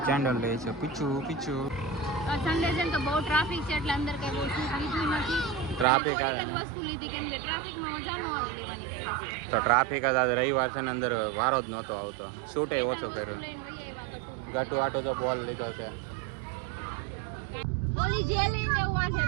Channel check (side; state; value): left; drops out; at 5.9 s